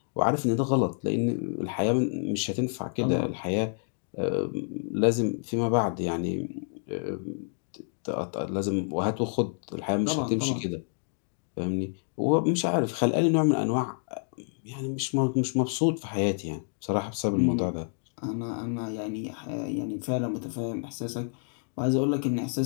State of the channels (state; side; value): silent; right; 59 dB below the other